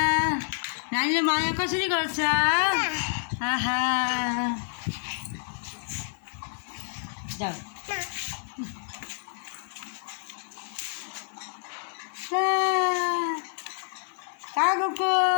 नानीले माया कसरी गर्छ? आहा जाऊ कहाँ गएको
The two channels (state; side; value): silent; right; digital silence